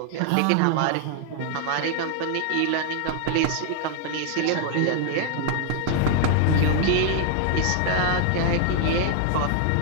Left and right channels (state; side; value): different; both; correlation 0.00